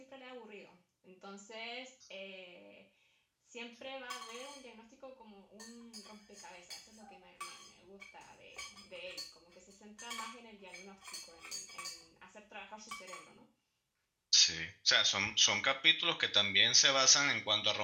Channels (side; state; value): both; identical; correlation 1.00